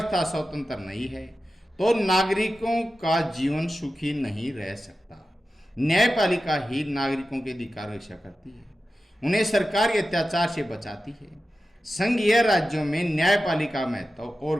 तथा स्वतंत्र नहीं है तो नागरिकों का जीवन सुखी नहीं रह सकता। न्यायपालिका ही नागरिकों के अधिकार की रक्षा करती है, उन्हें सरकार के अत्याचार से बचाती है। संघीय राज्यों में न्यायपालिका महत्व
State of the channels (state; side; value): normal; both; correlation 0.93